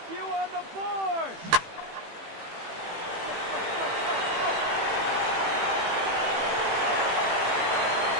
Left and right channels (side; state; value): left; late; 18 ms